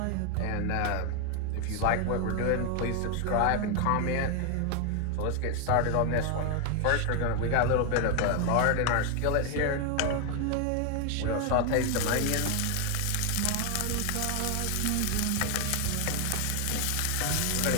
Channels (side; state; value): both; different; correlation 0.01